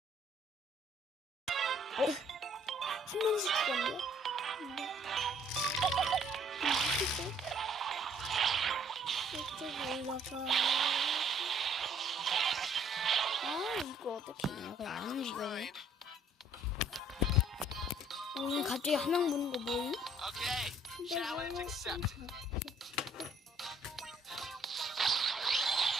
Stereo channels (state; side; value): normal; both; correlation 0.62